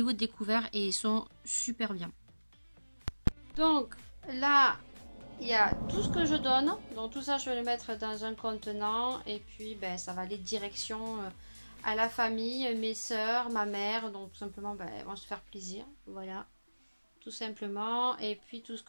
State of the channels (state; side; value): inverted; both; correlation -1.00